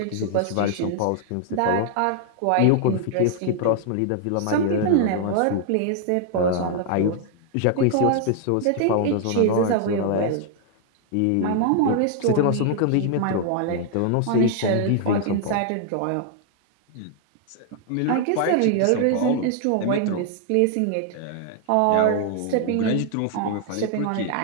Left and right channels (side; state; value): both; different; correlation 0.00